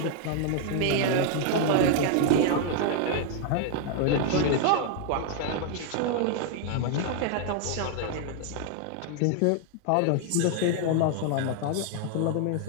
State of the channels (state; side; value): different; both; correlation 0.00